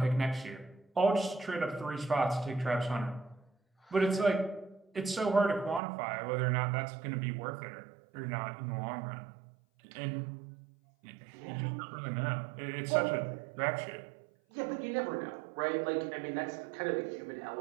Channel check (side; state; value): left; drops out; at 5.8 s